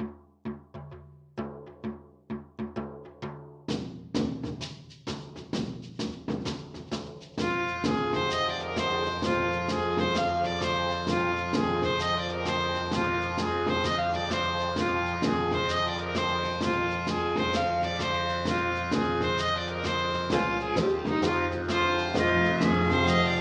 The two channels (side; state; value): both; identical; correlation 1.00